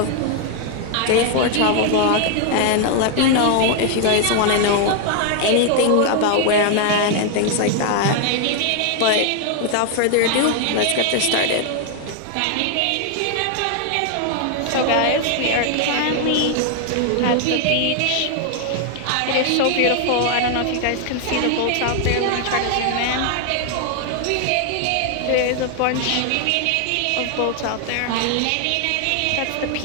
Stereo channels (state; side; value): different; both; correlation 0.00